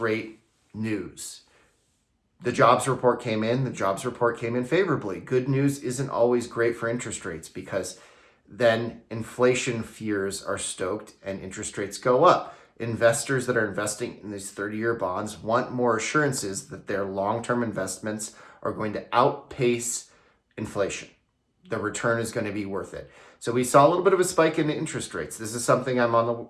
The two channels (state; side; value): identical; both; correlation 1.00